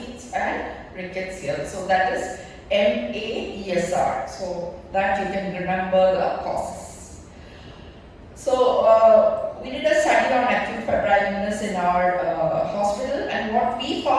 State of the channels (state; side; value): identical; both; correlation 1.00